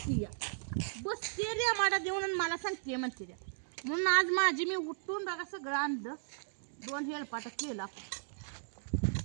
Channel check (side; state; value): left; silent; digital silence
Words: बसते रे माडा देऊन मला सांगते म्हणते रे. म्हणून आज माझी मी उठून बघा सगळं आणलं. 2 हेलपाट केला.